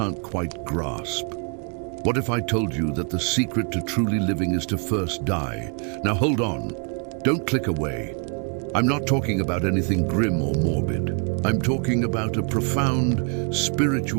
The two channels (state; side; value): quieter; left; 39.0 dB